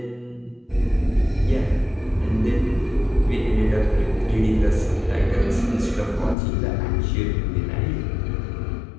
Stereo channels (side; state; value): right; drops out; at 6.4 s